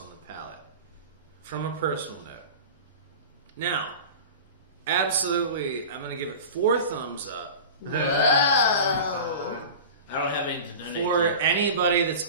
the palate, from a personal note. Now, absolutely, I'm going to give it 4 thumbs up. Whoa. I don't have any to donate For to. anybody that's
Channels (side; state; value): both; inverted; correlation -0.34